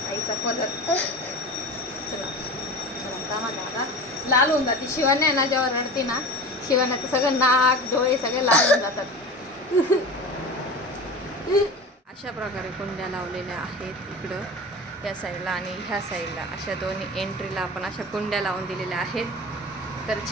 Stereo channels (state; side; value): normal; both; correlation 0.32